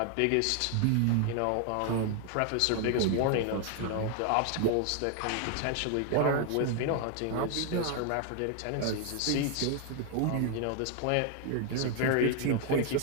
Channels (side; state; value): both; different; correlation 0.00